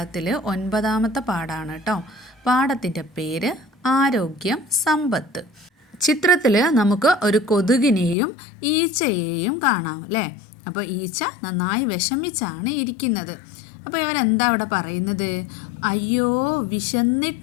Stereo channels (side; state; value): right; drops out; at 8.2 s